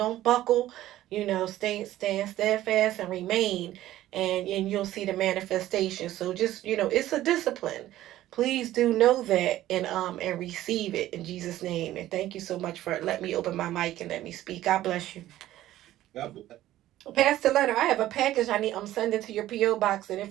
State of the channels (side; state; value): left; quieter; 14.3 dB